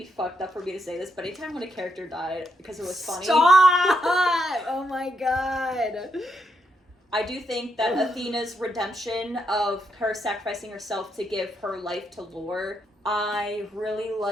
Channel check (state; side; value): normal; both; correlation 0.80